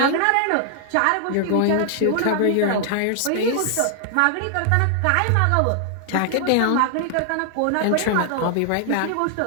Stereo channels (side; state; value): both; different; correlation 0.00